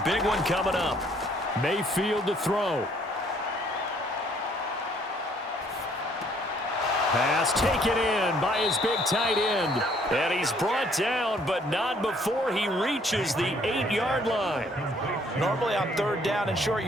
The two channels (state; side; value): normal; both; correlation 0.63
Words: big one coming up. Mayfield to throw. Pass taken in by his big tight end. And he's brought down, but not before he reaches the 8-yard line. Normally on 3rd down and short